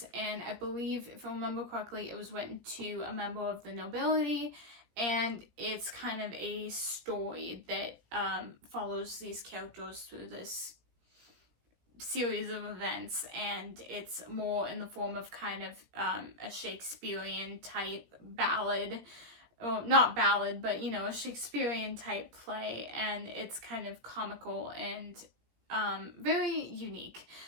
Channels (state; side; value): late; left; 17 ms